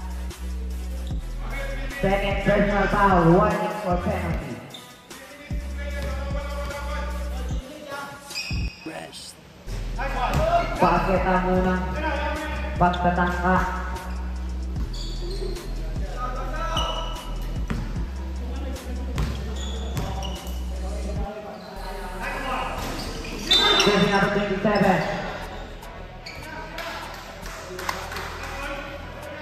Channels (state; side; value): identical; both; correlation 1.00